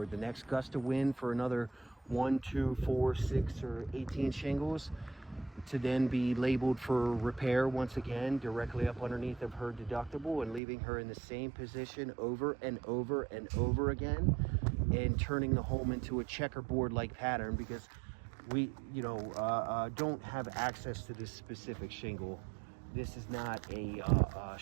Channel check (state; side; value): drops out; left; at 10.6 s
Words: the next gust of wind for another 1, 2, 4, 6, or 18 shingles to then be labeled for repair once again directly up underneath of her deductible, and leaving her in the same position over and over and over again, and turning the home into a checkerboard like pattern, because we don't have access to this specific shingle. This is not a